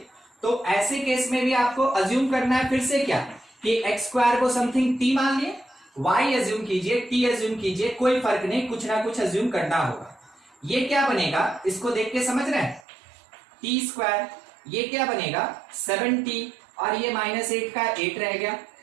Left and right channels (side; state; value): left; drops out; at 12.8 s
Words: तो ऐसे केस में भी आपको अज्यूम करना है फिर से क्या, कि एक्स स्क्वायर को समथिंग टी मान लिए, वाई अज्यूम कीजिए, टी अज्यूम कीजिए, कोई फर्क नहीं, कुछ ना कुछ अज्यूम करना होगा। ये क्या बनेगा, इसको देख के समझ रहे हैं, टी स्क्वायर, ये क्या बनेगा 7t, और ये -8 का 8 रह गया।